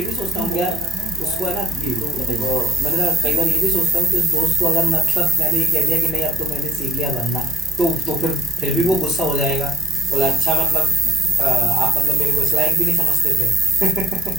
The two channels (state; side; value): noise; right; hum, 29 dB below the sound